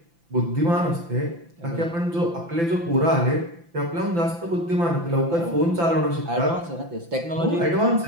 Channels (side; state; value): left; late; 5.9 ms